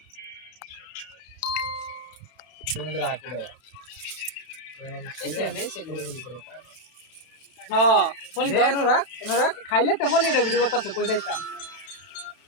তোমাদের রাখো দে হ্যাঁ ফোন এনো রাখ খাইলে তো ফোন এটা ভিডিও করতেছে কই যাইতাম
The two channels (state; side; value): late; right; 31 ms